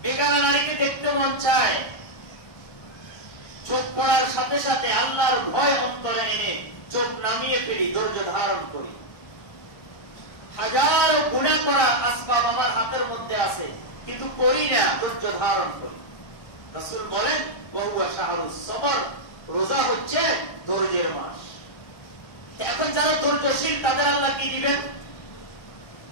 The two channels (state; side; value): late; right; 1.2 ms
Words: বেগানা নারীকে দেখতে মন চায়, চোখ পড়ার সাথে সাথে আল্লাহর ভয় অন্তরে এনে চোখ নামিয়ে ফেলি, ধৈর্য ধারণ করি। হাজারো গুনাহ করার আসবাব আমার হাতের মধ্যে আছে, কিন্তু করি না, ধৈর্য ধারণ করি। রাসূল বলেন ওয়া শাহরুস সবর, রোজা হচ্ছে ধৈর্যের মাস। এখন যারা ধৈর্যশীল তাদের আল্লাহ কি দিবেন?